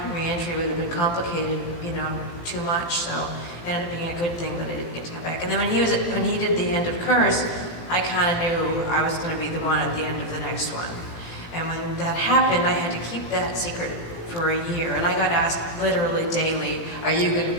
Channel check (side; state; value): right; late; 18 ms